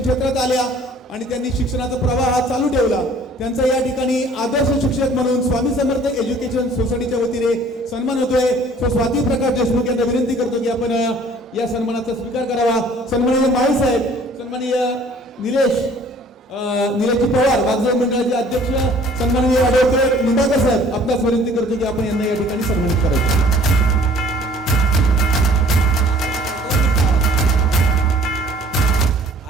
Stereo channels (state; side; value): normal; both; correlation 0.53